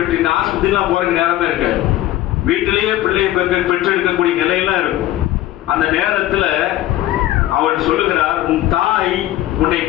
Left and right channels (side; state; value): right; quieter; 14.7 dB